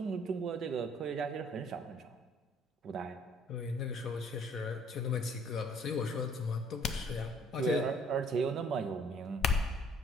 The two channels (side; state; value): both; normal; correlation 0.59